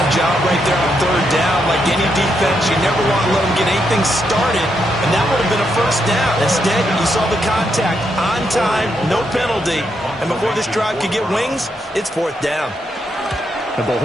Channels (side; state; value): both; normal; correlation 0.80